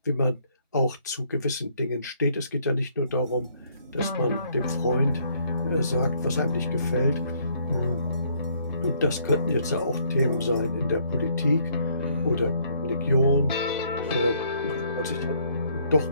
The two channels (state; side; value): inverted; both; correlation -0.66